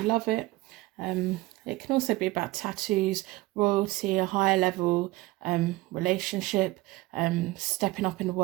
love it. It can also be about tattoos, royalty, a higher level relationship, stepping up in the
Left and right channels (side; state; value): left; quieter; 19.7 dB